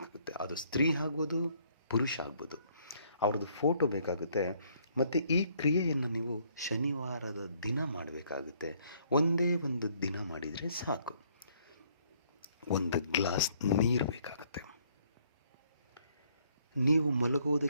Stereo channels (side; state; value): both; inverted; correlation -0.65